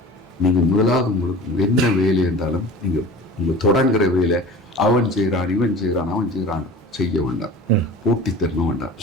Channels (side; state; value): both; normal; correlation 0.38